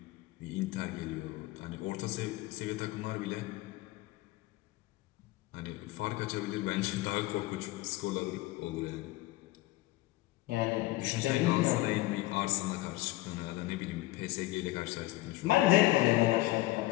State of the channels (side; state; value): right; quieter; 18.5 dB